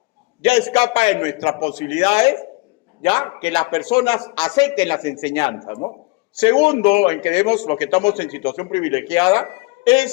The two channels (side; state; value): right; quieter; 25.5 dB